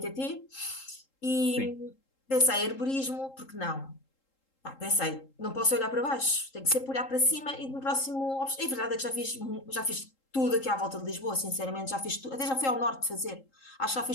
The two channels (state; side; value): late; right; 3.7 ms